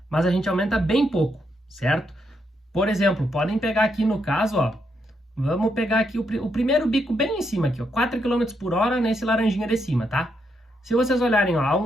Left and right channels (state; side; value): normal; both; correlation 0.79